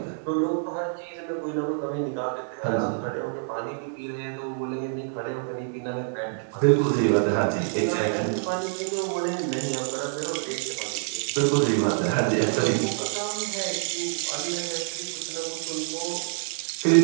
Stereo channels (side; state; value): left; silent; digital silence